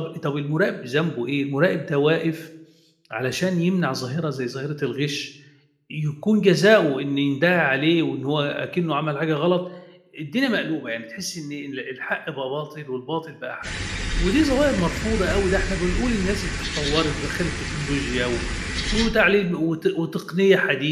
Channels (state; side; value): identical; both; correlation 1.00